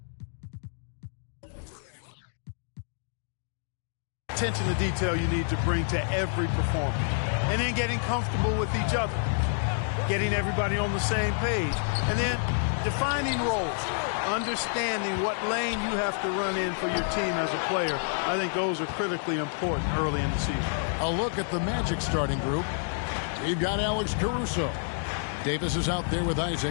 attention to detail you need to bring to every performance. And then getting comfortable with each other, getting everybody on the same page, and then defining roles. Understanding what lane you have to run in for your team as a player. I think those are critically important early in the season. A look at the Magic starting group. We've got Alex Caruso. Davis is out there with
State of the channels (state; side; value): silent; right; digital silence